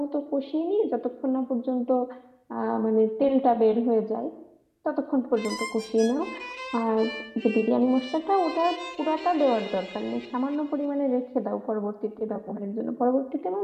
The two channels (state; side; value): identical; both; correlation 1.00